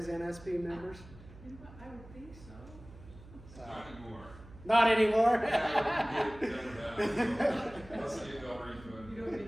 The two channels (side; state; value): right; noise; hum, 19 dB below the sound